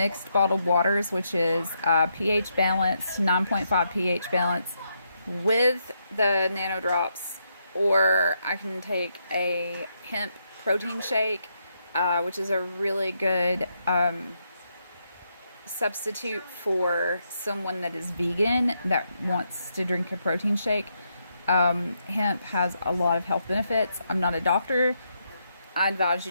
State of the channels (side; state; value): both; inverted; correlation -0.79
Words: bottled waters, which is pH balanced, 9.5 pH balance, with the nano drops, or I can take a hemp protein shake, which is a really good substitute for someone that is vegan that wants to drink a protein shake. Hemp has a lot of health benefits. I'm not a doctor. I advise